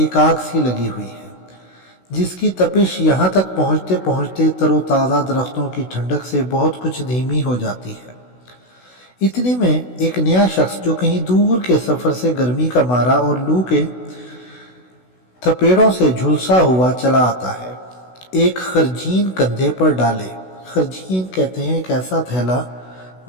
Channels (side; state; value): right; late; 16 ms